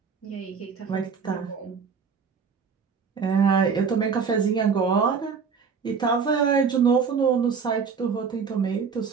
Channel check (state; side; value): quieter; left; 5.9 dB